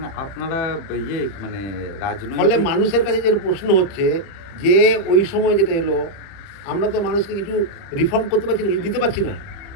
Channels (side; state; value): right; late; 30 ms